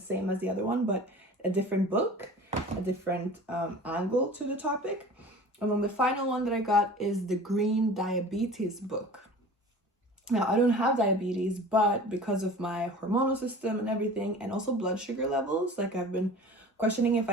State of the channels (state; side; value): normal; both; correlation 0.41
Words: as the other one, but a different book, a different angle to the topic. And then the final one that I got is the Green Diabetes book. Now, I don't have diabetes, but because of my hormonal system and everything, and also blood sugar levels, like I've been questioning if